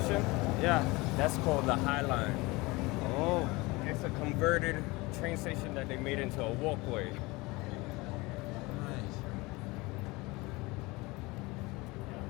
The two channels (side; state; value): right; quieter; 23.2 dB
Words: Yeah. that's called the High Line. Oh. It's a converted train station that they made into a walkway. Nice.